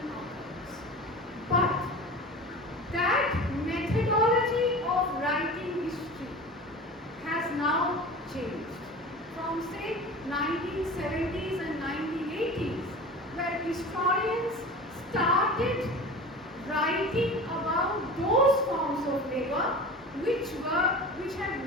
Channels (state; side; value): normal; both; correlation 0.35